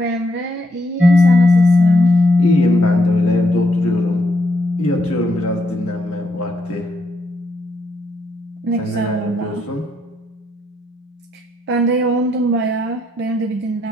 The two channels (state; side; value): normal; both; correlation 0.76